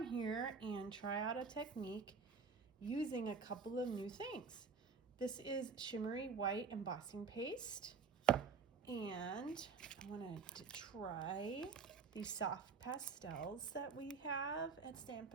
here and try out a technique using a couple of new things. This is Shimmery white embossing paste, and I wanted to try these soft pastels that we have at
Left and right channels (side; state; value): left; quieter; 5.2 dB